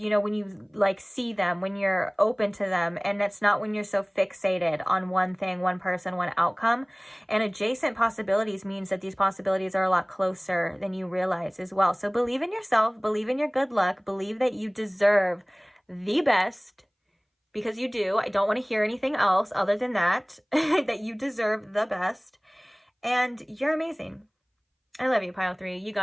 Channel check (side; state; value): both; identical; correlation 1.00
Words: you like see them, when you're open to them, and that's not when you're so fixated on one thing, one person, one outcome. And adjacent possibilities means that these possibilities are a lot closer than you realize as well. So believe in yourself, believe in your good luck, believe that you deserve the best, because you do. I don't want to hear anything else other than that, that you deserve the best, and you're amazing. I love you, pile 3. You